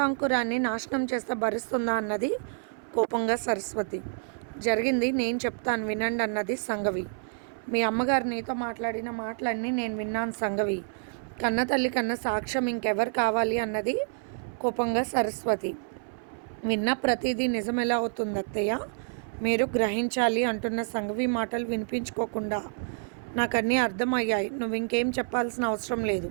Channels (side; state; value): left; silent; 57 dB below the other